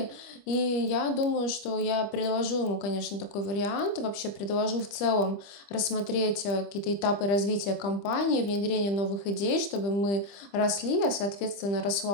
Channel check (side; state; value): right; late; 25 ms